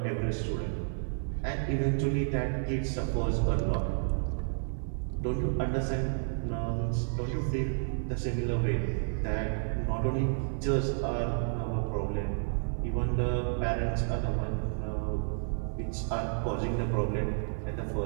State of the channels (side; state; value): left; silent; digital silence